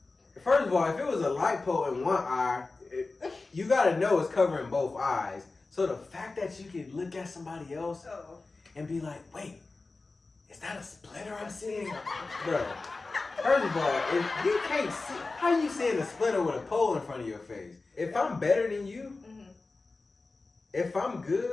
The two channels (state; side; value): quieter; right; 3.6 dB